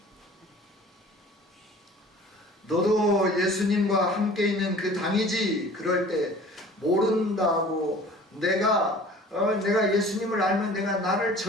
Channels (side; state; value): both; normal; correlation 0.46